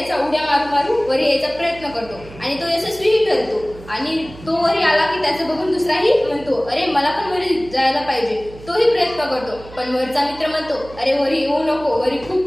उड्या मारू मारू वरी यायचा प्रयत्न करतो आणि तो यशस्वीही ठरतो. आणि तो वरी आला की त्याचं बघून दुसराही म्हणतो, अरे मला पण वरी जायला पाहिजे. तोही प्रयत्न करतो, पण वरचा मित्र म्हणतो, अरे वरी येऊ नको, वरी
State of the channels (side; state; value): right; noise; hum, 18 dB below the sound